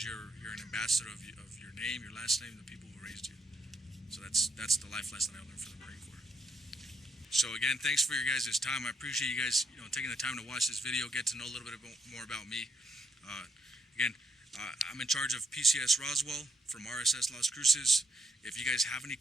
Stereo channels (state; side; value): normal; both; correlation 0.75